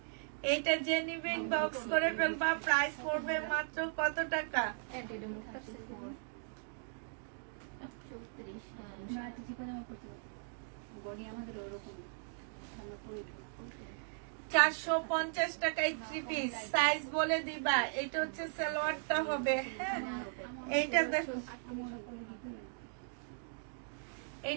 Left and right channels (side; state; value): left; silent; digital silence